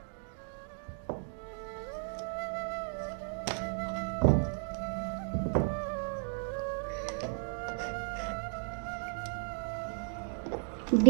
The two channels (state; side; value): silent; left; 55 dB below the other